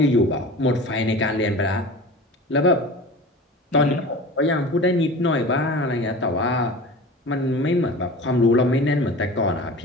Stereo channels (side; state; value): both; normal; correlation 0.36